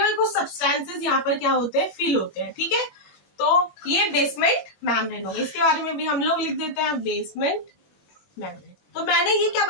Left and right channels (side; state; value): right; late; 21 ms